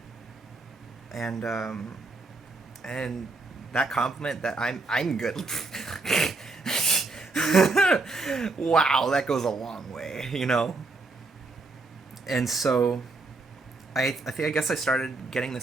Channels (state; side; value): quieter; left; 3.5 dB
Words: and that compliment that I'm good. Wow, that goes a long way, you know? And so I guess I started getting